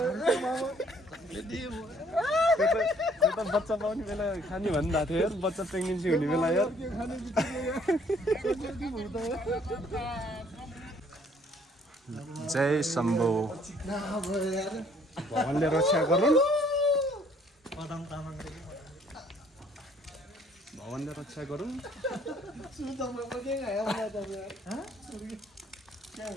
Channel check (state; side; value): normal; both; correlation 0.61